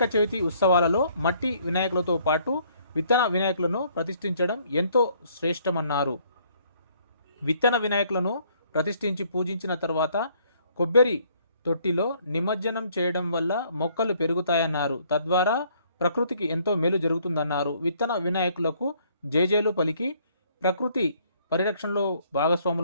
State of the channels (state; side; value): inverted; both; correlation -0.64